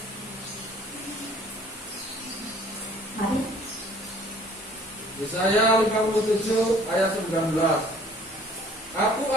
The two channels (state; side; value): normal; both; correlation 0.54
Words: Mari. Yesaya 57 ayat 19. Aku